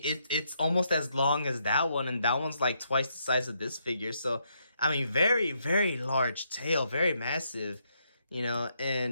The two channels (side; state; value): both; inverted; correlation -0.77